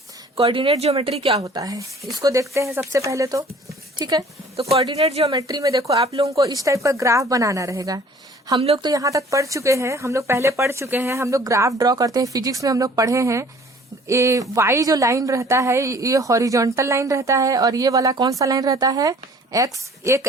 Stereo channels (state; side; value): normal; both; correlation 0.52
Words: कोऑर्डिनेट जियोमेट्री क्या होता है इसको देखते हैं सबसे पहले तो, ठीक है। तो कोऑर्डिनेट जियोमेट्री में देखो आप लोगों को इस टाइप का ग्राफ बनाना रहेगा। हम लोग तो यहाँ तक पढ़ चुके हैं, हम लोग पहले पढ़ चुके हैं, हम लोग ग्राफ ड्रॉ करते हैं, फिजिक्स में हम लोग पढ़े हैं। ये वाई जो लाइन रहता है ये हॉरिजॉन्टल लाइन रहता है और ये वाला कौन सा लाइन रहता है एक्स। एक